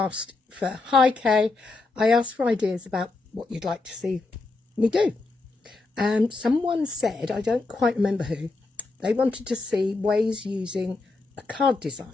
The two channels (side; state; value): right; quieter; 3.5 dB